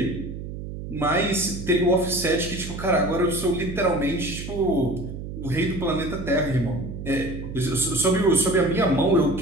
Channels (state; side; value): noise; right; hum, 8 dB below the sound